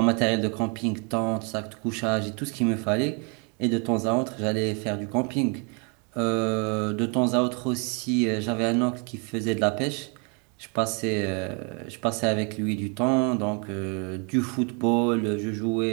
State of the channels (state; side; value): quieter; left; 35.0 dB